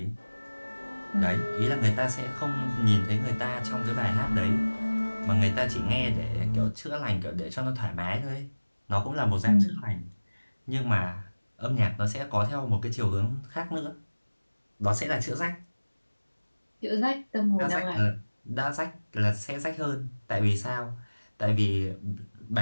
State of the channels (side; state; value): both; inverted; correlation -1.00